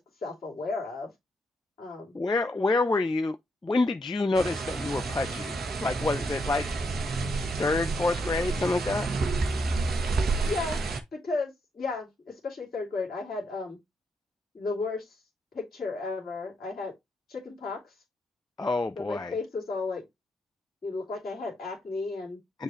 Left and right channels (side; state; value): both; normal; correlation 0.78